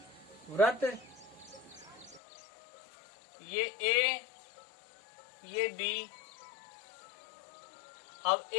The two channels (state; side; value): drops out; right; at 2.2 s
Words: वृत्त, ये ए, ये बी। अब